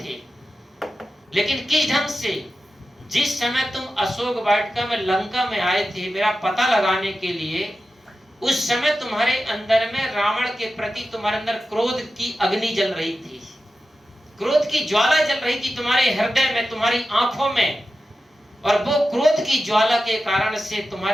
लेकिन किस ढंग से? जिस समय तुम अशोक वाटिका में लंका में आए थे मेरा पता लगाने के लिए, उस समय तुम्हारे अंदर में रावण के प्रति तुम्हारे अंदर क्रोध की अग्नि जल रही थी, क्रोध की ज्वाला जल रही थी तुम्हारे हृदय में, तुम्हारी आंखों में, और वो क्रोध की ज्वाला के कारण से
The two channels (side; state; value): both; normal; correlation 0.92